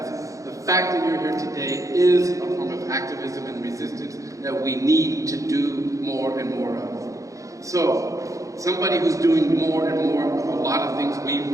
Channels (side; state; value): left; late; 0.16 ms